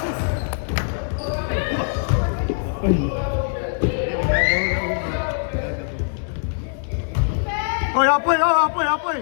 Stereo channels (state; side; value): silent; right; digital silence